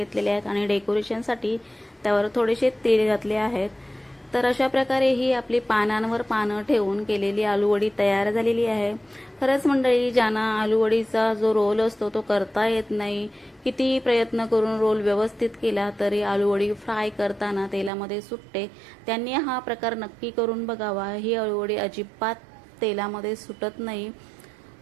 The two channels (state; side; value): drops out; left; at 17.9 s